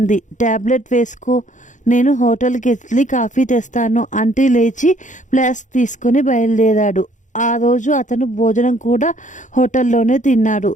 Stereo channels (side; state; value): right; late; 0.36 ms